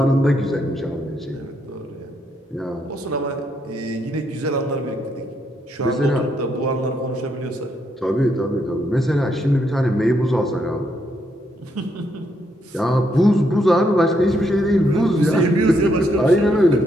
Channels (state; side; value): normal; both; correlation 0.76